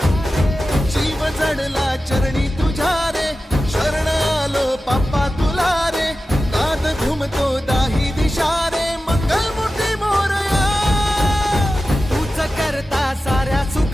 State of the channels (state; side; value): normal; both; correlation 0.94